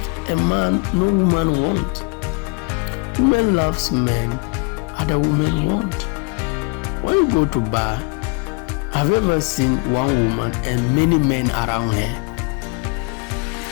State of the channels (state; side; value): quieter; right; 32.3 dB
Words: a man no woman won't. Women loves men other women won't. When you go to bar, have you ever seen one woman and many men around her?